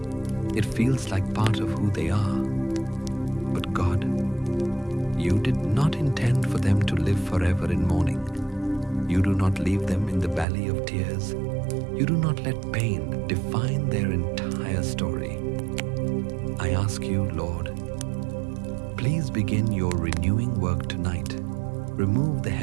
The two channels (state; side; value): drops out; left; at 10.5 s